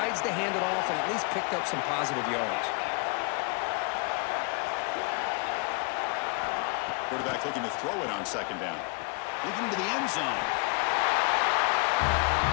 to hand it off and at least picked up some positive yards. Quarterback looking to throw it on second down. Looking to the end zone.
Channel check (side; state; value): right; quieter; 32.8 dB